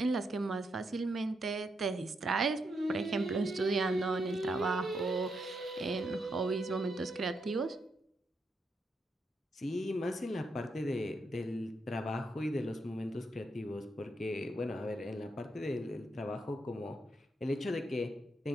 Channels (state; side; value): normal; both; correlation 0.80